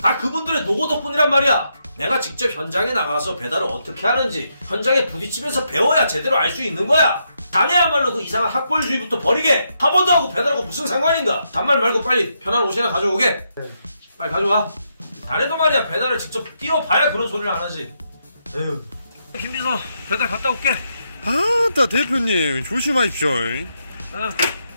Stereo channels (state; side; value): inverted; both; correlation -0.80